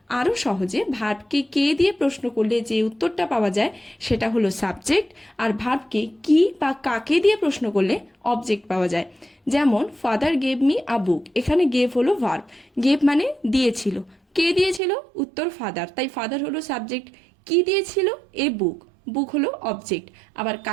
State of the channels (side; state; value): left; drops out; at 14.8 s